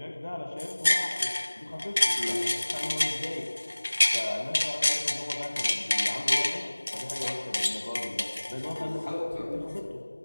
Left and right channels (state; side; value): inverted; both; correlation -1.00